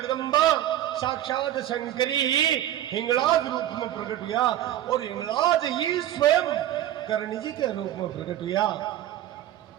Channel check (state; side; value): quieter; left; 12.6 dB